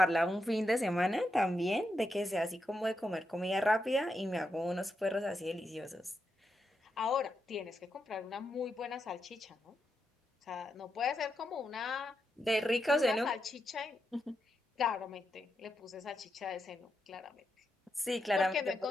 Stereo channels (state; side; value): normal; both; correlation 0.85